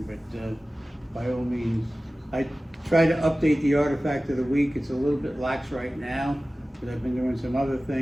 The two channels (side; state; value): both; normal; correlation 0.96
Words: but by all means. I try to update the artifact of the week. It's a little bit lax right now, but I've been doing some other